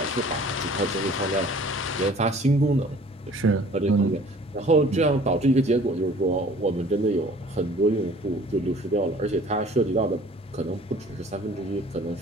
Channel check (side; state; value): both; normal; correlation 0.51